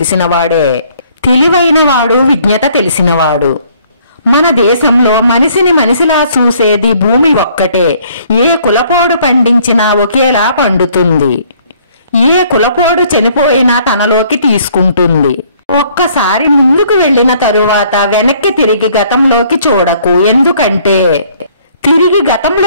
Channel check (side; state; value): both; inverted; correlation -0.61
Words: తెలివైన వాడు, విజ్ఞత తెలిసినవాడు. మన దేశంలో మనిషిని మనిషిలా చూసేది భూమి ఒక్కటే. ఏ కులపోడు పండించినా ఒకేలా పండుతుంది. ఏ కులపోడు చనిపోయినా తనలోకి తీసుకుంటుంది. ఒక్కసారి ముందుకు వెళ్లిన తరువాత వెనక్కి తిరిగి గతంలోకి చూడకు. ఎందుకంటే తిరిగి